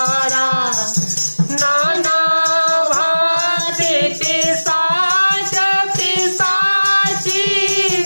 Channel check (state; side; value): inverted; both; correlation -1.00